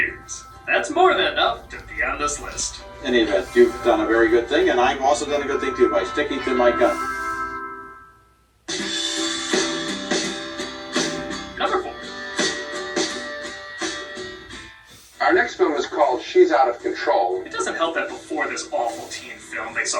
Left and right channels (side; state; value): both; identical; correlation 1.00